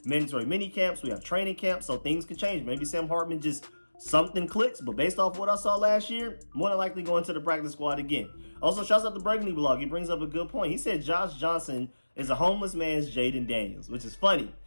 mandatory mini camps, we have training camps, so things could change. Maybe Sam Hartman just something clicks, but based off what I saw last year, more than likely going to the practice squad again. Also, shouts out to Burgundy Blog. He brings up a good point. He said Josh Johnson is a homeless man's Jaden Daniels, which is funny.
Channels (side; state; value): both; inverted; correlation -1.00